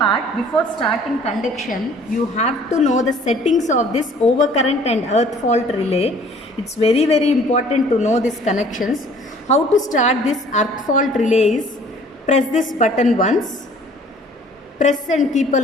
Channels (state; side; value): normal; both; correlation 0.54